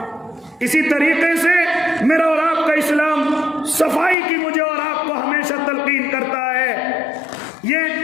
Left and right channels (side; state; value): right; drops out; at 4.2 s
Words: اسی طریقے سے میرا اور آپ کا اسلام صفائی کی مجھے اور آپ کو ہمیشہ تلقین کرتا ہے۔